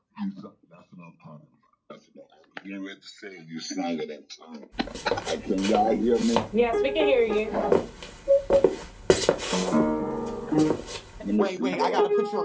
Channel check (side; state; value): both; identical; correlation 1.00